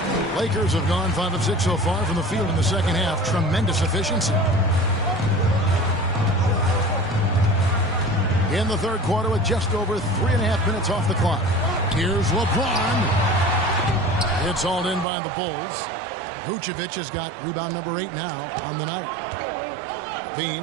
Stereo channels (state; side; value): drops out; left; at 15.1 s